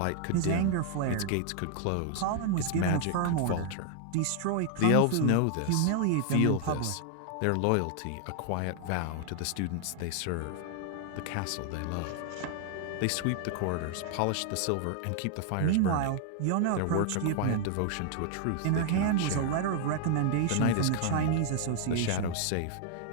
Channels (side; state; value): both; different; correlation 0.00